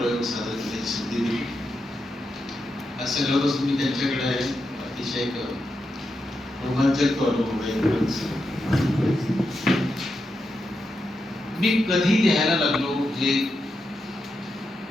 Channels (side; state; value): both; normal; correlation 0.86